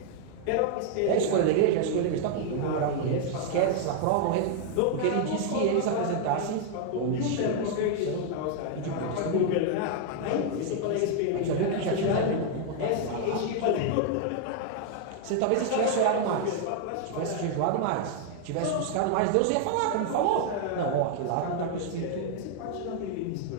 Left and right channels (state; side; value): different; both; correlation 0.00